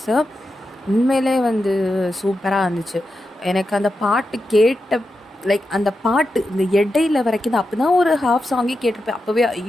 sir. உண்மையிலே வந்து சூப்பராக இருந்துச்சு. எனக்கு அந்த பாட்டு கேட்ட லைக் அந்த பாட்டு இந்த இடையில வரைக்கும் தான். அப்போ தான் ஒரு ஹாஃப் சாங்கே கேட்டிருப்பேன். அப்போவே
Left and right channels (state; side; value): normal; both; correlation 0.88